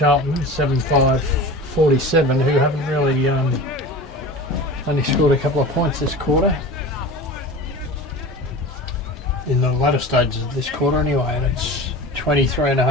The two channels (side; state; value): both; normal; correlation 0.34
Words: 7-5-47, who haven't really only scored a couple of points this quarter. In the latter stages of this quarter anyway, and it's